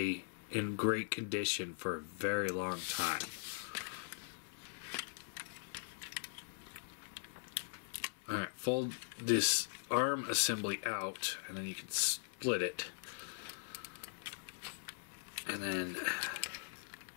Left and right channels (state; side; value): silent; right; 50 dB below the other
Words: in great condition for a very long time. Alright, fold this arm assembly out, and then you can split it. And then